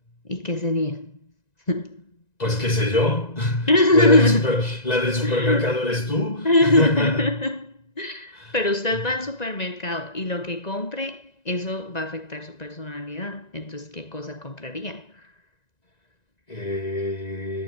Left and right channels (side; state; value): right; late; 1.9 ms